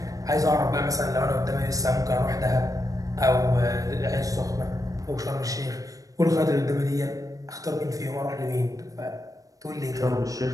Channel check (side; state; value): left; late; 0.17 ms